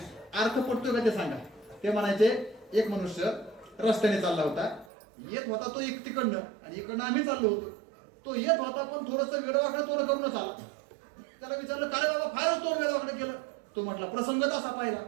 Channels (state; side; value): drops out; left; at 4.9 s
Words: अर्थ पडतोय का ते सांगा. ते म्हणायचे, एक मनुष्य रस्त्याने चालला होता, येत होता तो एक तिकडनं आणि इकडनं आम्ही चाललो होतो. तो येत होता पण थोडस वेडवाकडे तोंड करूनच आला. त्याला विचारलं, काय बाबा फारच तोंड वेडवाकडे केलं. तो म्हटला, प्रसंगच असा पाहिला,